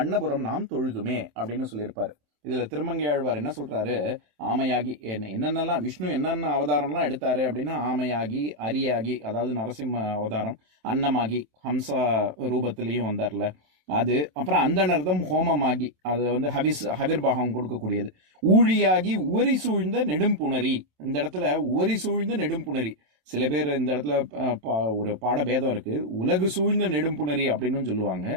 நாம் தொழுதுமே அப்படின்னு சொல்லியிருப்பாரு. இதுல திருமங்கை ஆழ்வார் என்ன சொல்றாரு? ஆமையாகி என்னென்னலாம் விஷ்ணு என்னென்ன அவதாரம்லாம் எடுத்தாரு அப்படின்னா ஆமையாகி, அரியாகி அதாவது நரசிம்ம அவதாரம், அன்னமாகி ஹம்சா ரூபத்திலையும் வந்தார்ல அது, அப்புறம் அந்தனர்தம் ஹோமமாகி அது வந்து ஹவிர்பாகம் கொடுக்கக்கூடியது, ஊழியாகி உவரி சூழ்ந்த நெடும்புணரி. இந்த இடத்துல உவரி சூழ்ந்த நெடும்புணரி, சில பேர் இந்த இடத்துல ஒரு பாடபேதம் இருக்கு. உலகு சூழ்ந்த நெடும்புணரி அப்படின்னு சொல்லுவாங்க.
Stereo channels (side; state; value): left; late; 27 ms